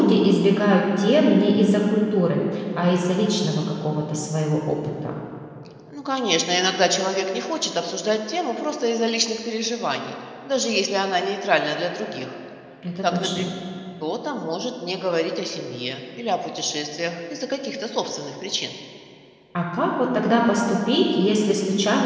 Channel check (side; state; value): both; identical; correlation 1.00